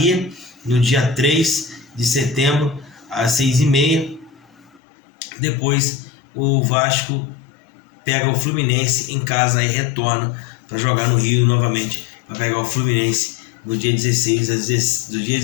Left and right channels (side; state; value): right; drops out; at 4.8 s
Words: no dia 3 de setembro às 6h30. Depois o Vasco pega o Fluminense em casa e retorna para jogar no Rio novamente, para pegar o Fluminense no dia 16 às